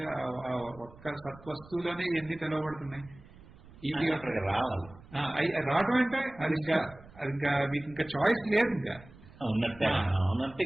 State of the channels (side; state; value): right; noise; rumble, 21 dB below the sound